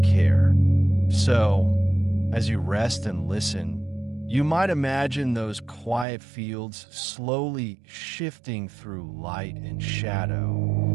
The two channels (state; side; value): drops out; left; at 6.1 s